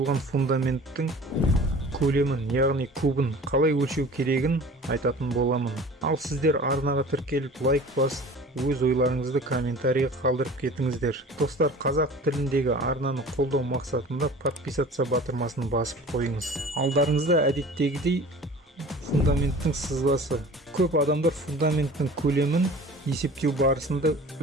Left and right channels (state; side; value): normal; both; correlation 0.42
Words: фундаменттің көлемін, яғни кубын қалай өлшеу керегін айтатын боламын. Ал сіздер арнаға тіркеліп лайк басып, өз ойларыңызды комментарийға қалдырып кетіңіздер. Достар, қазақ тіліндегі арнаны қолдау мақсатында подписаться батырмасын басып қойыңыз. Алдарыңызда әдеттегідей фундаменттің сызбасы. Көп адамдар фундаменттің көлемін есептеу барысында